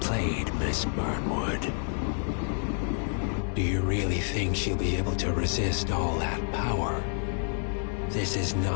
played, Miss Burnwood. Do you really think she'll be able to resist all that power? This is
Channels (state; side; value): silent; right; 58 dB below the other